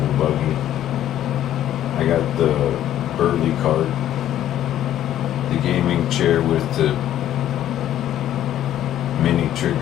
buggy. I got the Burley cart, the gaming chair with the mini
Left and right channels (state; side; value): quieter; right; 11.8 dB